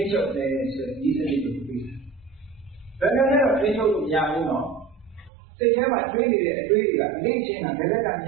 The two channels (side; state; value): left; drops out; at 5.3 s